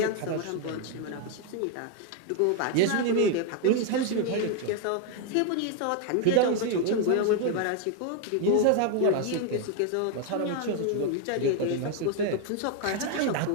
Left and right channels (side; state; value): both; different; correlation 0.00